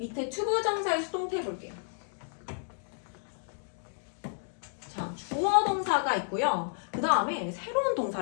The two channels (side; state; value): right; silent; digital silence